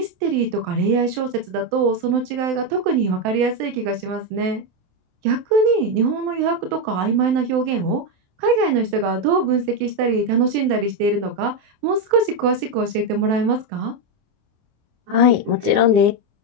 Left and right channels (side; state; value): left; late; 27 ms